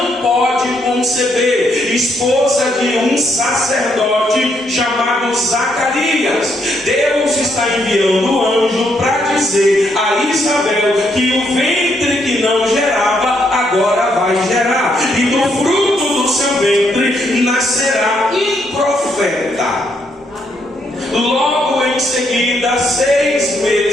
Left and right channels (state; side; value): normal; both; correlation 0.75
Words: pode conceber, esposa de um sacerdote chamado Zacarias. Deus está enviando o anjo para dizer a Isabel que o ventre que não gerava agora vai gerar, e do fruto do seu ventre nascerá um profeta. Logo em seguida, 6